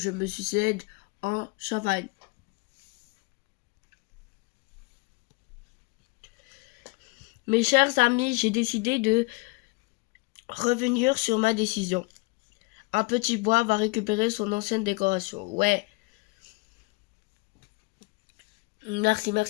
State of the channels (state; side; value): quieter; right; 26.9 dB